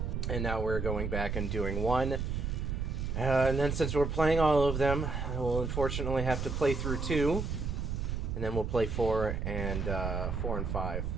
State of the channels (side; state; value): right; noise; rumble, 2 dB below the sound